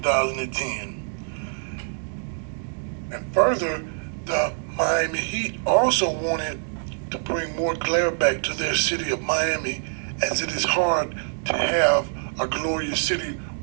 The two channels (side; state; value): left; silent; 62 dB below the other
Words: And further, the Miami Heat also wanted to bring more glare back to their city of Miami, as it is hard to have a glorious city